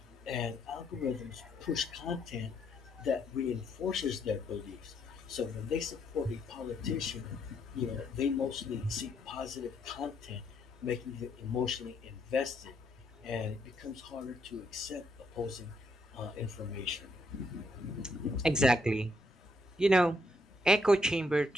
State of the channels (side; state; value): both; normal; correlation 0.74